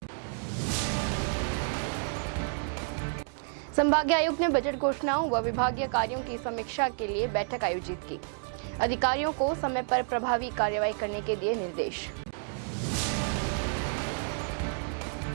संभागीय आयुक्त ने बजट घोषणाओं व विभागीय कार्यों की समीक्षा के लिए बैठक आयोजित की। अधिकारियों को समय पर प्रभावी कार्रवाई करने के दिए निर्देश।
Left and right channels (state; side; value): silent; left; 58 dB below the other